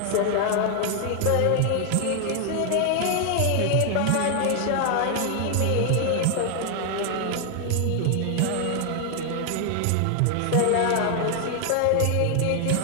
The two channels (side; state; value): both; different; correlation 0.00